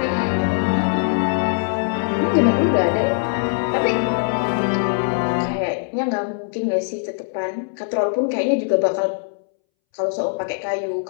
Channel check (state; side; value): silent; right; 64 dB below the other